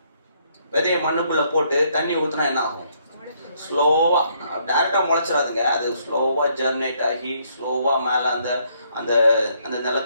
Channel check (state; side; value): inverted; both; correlation -0.70